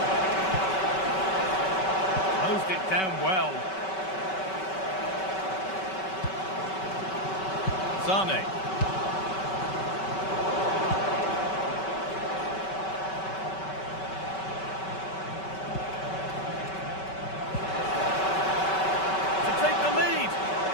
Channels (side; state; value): right; late; 5.3 ms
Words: Closed it down well. Sane.